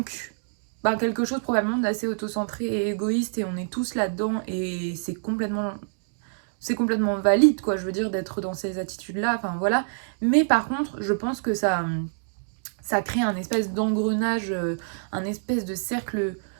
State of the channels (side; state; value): left; silent; digital silence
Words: bah, quelque chose probablement d'assez autocentré et égoïste, et on est tous là-dedans, et c'est complètement valide, quoi, je veux dire, d'être dans ces attitudes-là, enfin voilà. Mais par contre, je pense que ça crée un espèce d'engrenage, un espèce de cercle